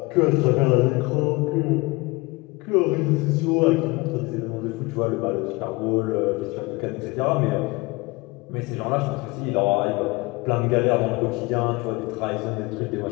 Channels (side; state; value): right; quieter; 24.2 dB